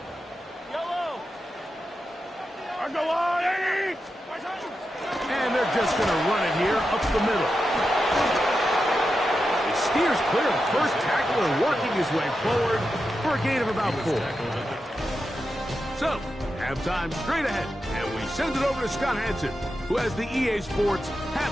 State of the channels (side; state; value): both; normal; correlation 0.89